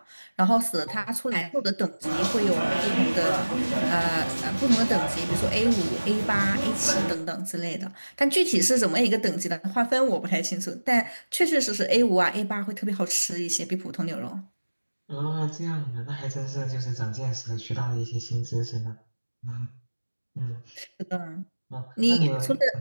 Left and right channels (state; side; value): inverted; both; correlation -1.00